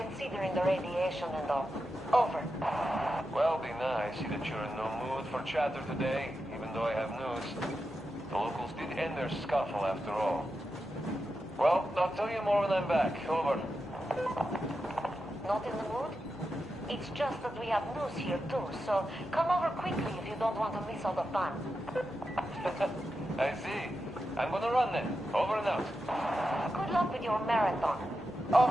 the radiation and all. Over. Well, Dina, I see that you're in no mood for chatter today, even though I have news. The locals did end their scuffle after all. Well, I'll tell you more when I'm back. Over. Not in the mood? It's just that we have news here too, so come over quickly if you don't want to miss all the fun. I see. I'm gonna run then. Over and out. Good luck with your marathon.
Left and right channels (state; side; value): normal; both; correlation 0.89